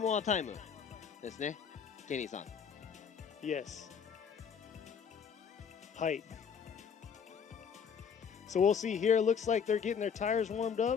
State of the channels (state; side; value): quieter; right; 6.9 dB